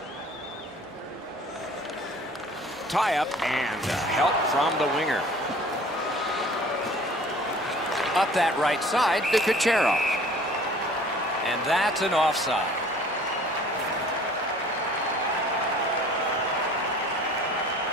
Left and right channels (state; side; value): normal; both; correlation 0.49